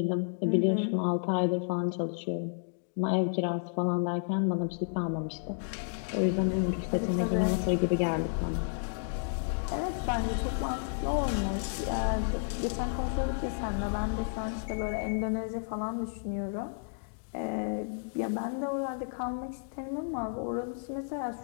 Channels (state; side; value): silent; right; digital silence